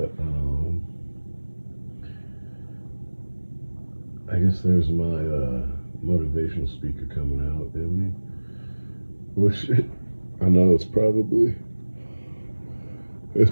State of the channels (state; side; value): inverted; both; correlation -1.00